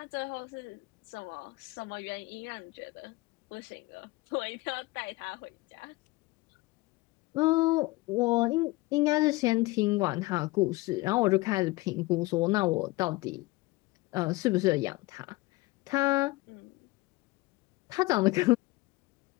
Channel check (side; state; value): right; quieter; 21.6 dB